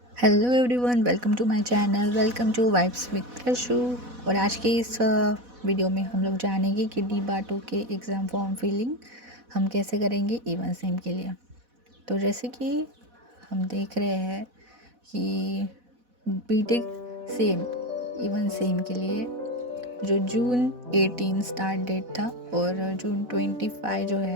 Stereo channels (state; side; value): late; left; 4.1 ms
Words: Hello everyone, welcome to my channel, welcome to vibes with Ashu. और आज के इस वीडियो में हम लोग जानेंगे कि डी बाटो के एग्ज़ाम फॉर्म फिलिंग हम कैसे करेंगे इवन सेम के लिए। तो जैसे कि हम देख रहे हैं कि बीटेक सेम इवन सेम के लिए जो जून 18 स्टार्ट डेट था और जून 25 जो